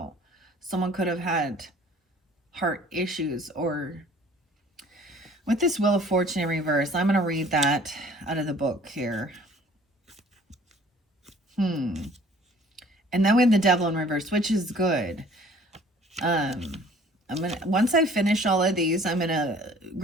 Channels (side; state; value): both; normal; correlation 0.53